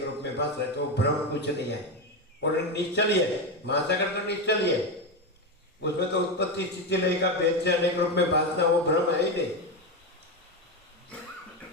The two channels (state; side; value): normal; both; correlation 0.13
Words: रूप में भास रहे, तो भ्रम कुछ नहीं है और निश्चल ही है। महासागर तो निश्चल ही है, उसमें तो उत्पत्ति स्थिति लय का भेद से अनेक रूप में भासना वो भ्रम है ही नहीं।